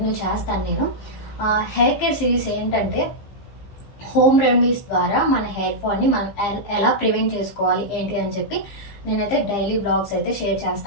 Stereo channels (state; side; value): late; right; 15 ms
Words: చేస్తాను నేను. హెయిర్ కేర్ సిరీస్ ఏంటంటే హోమ్ రెమెడీస్ ద్వారా మన హెయిర్ ఫాల్ని మనం ఎలా ప్రివెంట్ చేసుకోవాలి ఏంటి అని చెప్పి నేనైతే డైలీ బ్లాగ్స్ అయితే షేర్